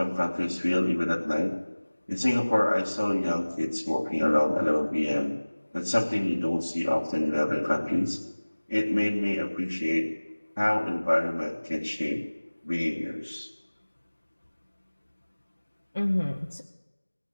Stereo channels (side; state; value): both; inverted; correlation -1.00